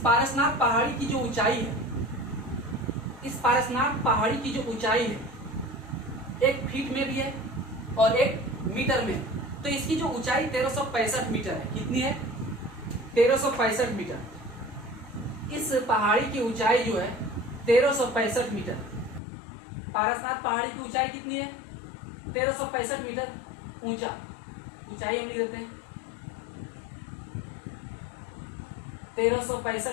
पहाड़ी की जो ऊंचाई है, इस पारसनाथ पहाड़ी की जो ऊंचाई है 1 फीट में भी है और 1 मीटर में, तो इसकी जो ऊंचाई 1365 मीटर है। कितनी है? 1365 मीटर। इस पहाड़ी की ऊंचाई जो है 1365 मीटर। पारसनाथ पहाड़ी की ऊंचाई कितनी है? 1365 मीटर ऊंचा। ऊंचाई हम लिख देते हैं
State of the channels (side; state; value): right; drops out; at 19.2 s